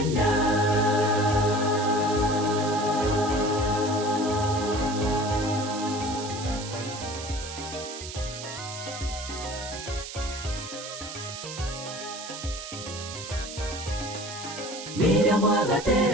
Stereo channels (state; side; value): noise; right; hiss, 10 dB below the sound